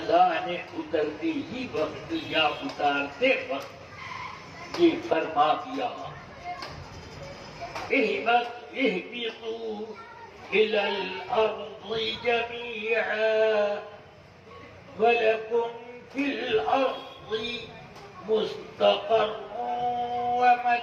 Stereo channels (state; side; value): identical; both; correlation 1.00